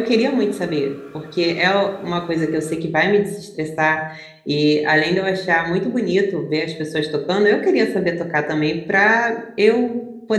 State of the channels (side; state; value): both; identical; correlation 1.00